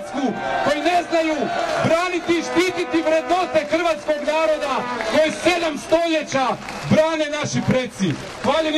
koji ne znaju braniti i štititi vrednote hrvatskog naroda koje 7 stoljeća brane naši preci. Hvaljen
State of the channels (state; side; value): identical; both; correlation 1.00